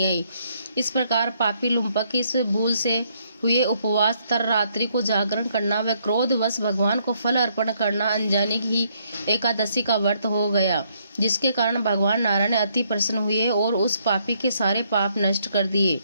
आई। इस प्रकार पापी लुम्पक इस भूल से हुए उपवास तर रात्रि को जागरण करना व क्रोधवश भगवान को फल अर्पण करना अनजाने ही एकादशी का व्रत हो गया, जिसके कारण भगवान नारायण अति प्रसन्न हुए और उस पापी के सारे पाप नष्ट कर दिए।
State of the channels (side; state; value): both; inverted; correlation -0.71